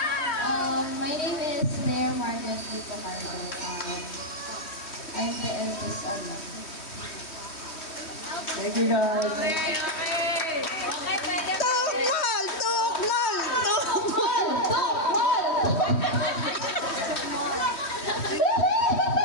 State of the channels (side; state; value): right; late; 3.1 ms